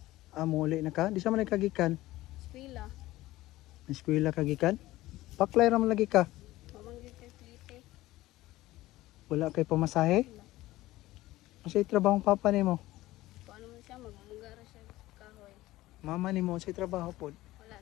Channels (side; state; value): right; quieter; 17.1 dB